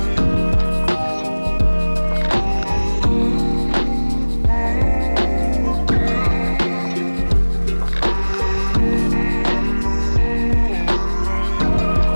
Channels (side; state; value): both; inverted; correlation -1.00